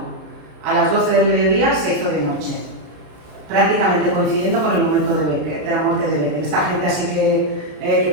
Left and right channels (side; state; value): left; late; 33 ms